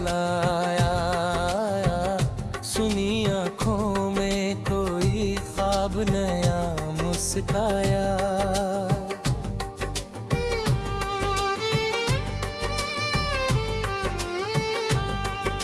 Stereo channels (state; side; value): identical; both; correlation 1.00